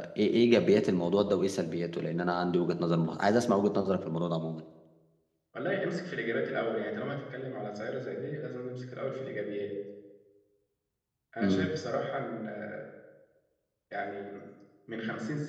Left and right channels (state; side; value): identical; both; correlation 1.00